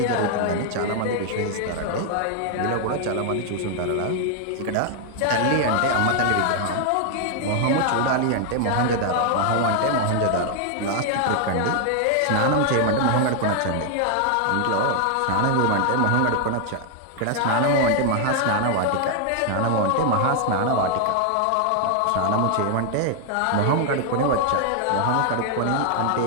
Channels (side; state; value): both; different; correlation 0.00